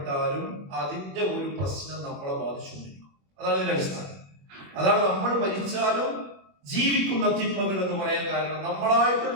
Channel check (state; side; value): late; left; 21 ms